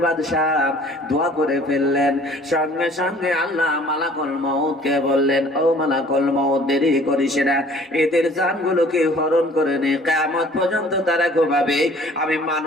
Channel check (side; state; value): both; normal; correlation 0.53